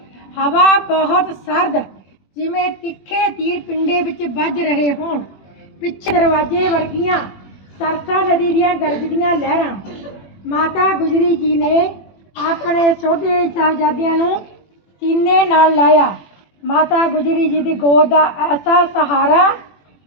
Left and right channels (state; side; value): late; right; 21 ms